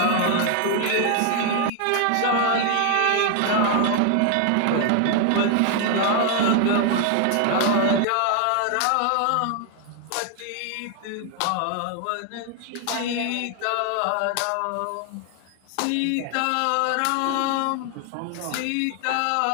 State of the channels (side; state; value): both; different; correlation 0.00